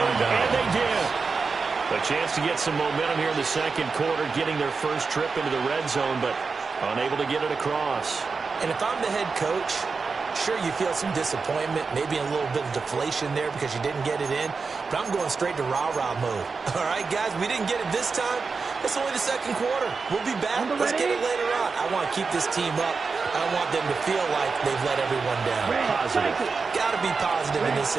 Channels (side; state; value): left; quieter; 4.7 dB